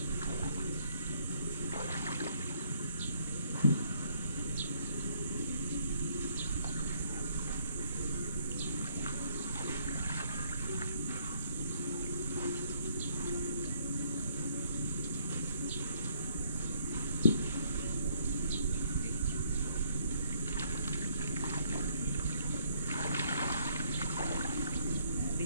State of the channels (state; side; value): inverted; both; correlation -0.67